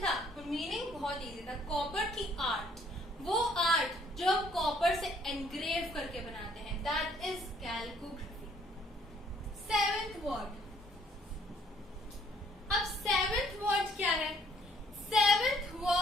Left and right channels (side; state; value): both; normal; correlation 0.63